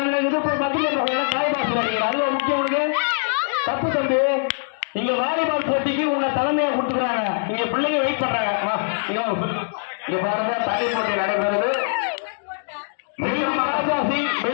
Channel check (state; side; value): silent; right; digital silence